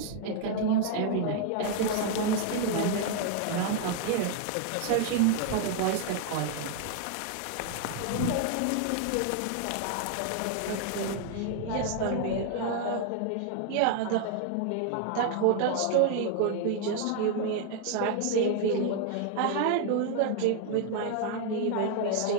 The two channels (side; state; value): both; different; correlation 0.00